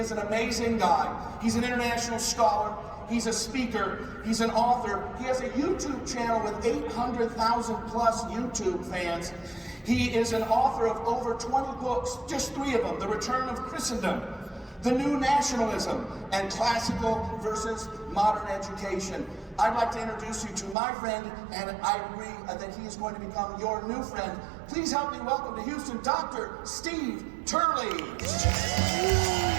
an amazing guy. He's an international scholar. He's a speaker. He's an author. He has a YouTube channel with 800,000 plus YouTube fans. He is an author of over 20 books, just 3 of them: The Return of Christendom, The New Nationalism, and Classical versus Modern Education. I'd like to introduce you to my friend, and I agree that he is going to become your new friend. Please help me welcome to Houston, Dr. Steve Turley.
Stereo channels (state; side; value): drops out; left; at 20.8 s